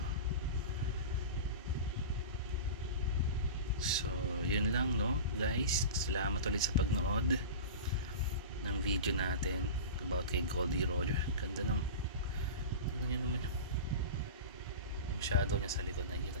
So yun lang, no guys, salamat ulit sa pagnood ng video natin about kay Goldie Roger. Ganda ng, tignan nyo naman yung shadow niya sa likod, nakikita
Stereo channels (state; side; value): inverted; both; correlation -0.30